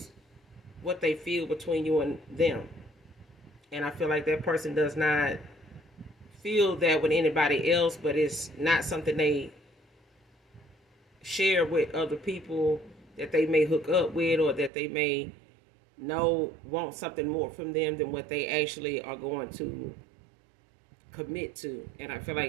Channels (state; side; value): drops out; left; at 14.7 s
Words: what they feel between you and them. And I feel like that person does not feel that with anybody else, but it's not something they share with other people that they may hook up with, or that they may know want something more from them than what they actually are going to commit to. And I feel